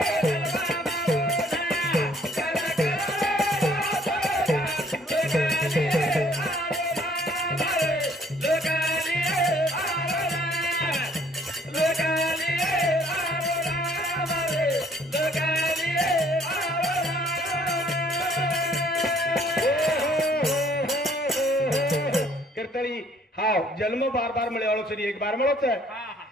कीर्तनी हाव जन्म बार बार मिळे वाळो सरी एक बार मिळोच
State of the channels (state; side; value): normal; both; correlation 0.60